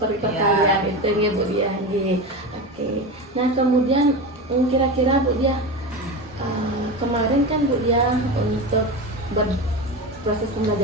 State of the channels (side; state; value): both; normal; correlation 0.23